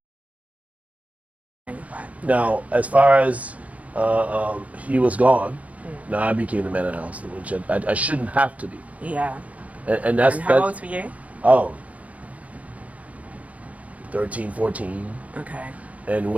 Right. Now, as far as he was gone, Mm. now I became the man of the house, which I shouldn't have to be, Yeah. and And how old were you? oh 13, 14. Okay. And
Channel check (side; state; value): left; late; 0.068 ms